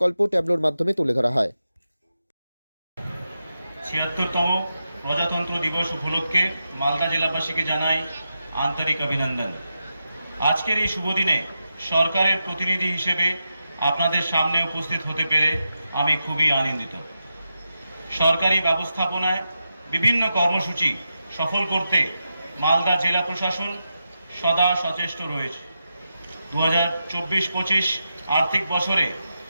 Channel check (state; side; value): inverted; both; correlation -0.87